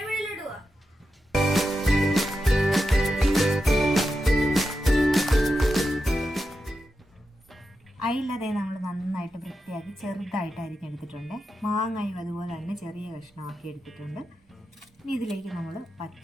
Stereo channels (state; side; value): normal; both; correlation 0.89